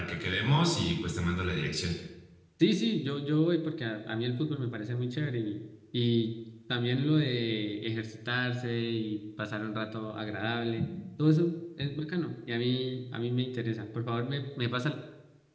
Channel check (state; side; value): identical; both; correlation 1.00